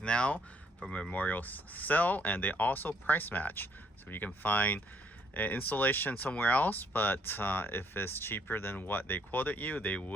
for Memorial Sale, and they also price match. So you can find an installation somewhere else, but if it's cheaper than what they quoted you, they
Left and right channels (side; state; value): both; normal; correlation 0.67